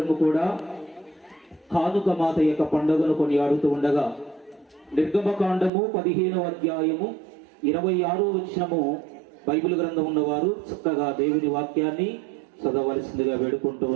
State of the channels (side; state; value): left; drops out; at 5.7 s